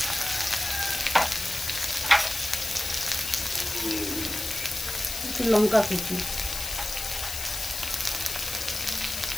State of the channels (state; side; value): noise; left; hiss, 5 dB below the sound